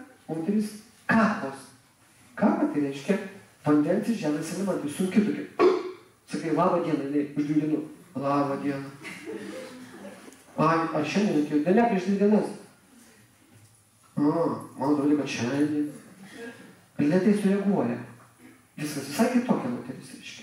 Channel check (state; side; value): identical; both; correlation 1.00